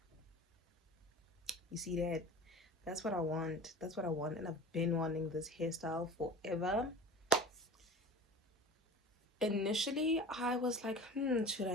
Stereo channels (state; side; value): normal; both; correlation 0.37